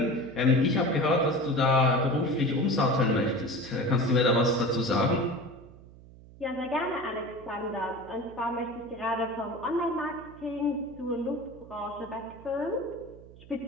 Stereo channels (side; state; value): right; noise; hum, 20 dB below the sound